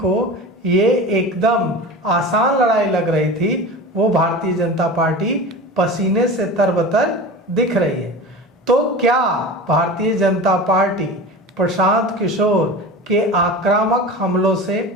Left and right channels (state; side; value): normal; both; correlation 0.32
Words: ये एकदम आसान लड़ाई लग रही थी, वो भारतीय जनता पार्टी पसीने से तरबतर दिख रही है। तो क्या भारतीय जनता पार्टी प्रशांत किशोर के आक्रामक हमलों से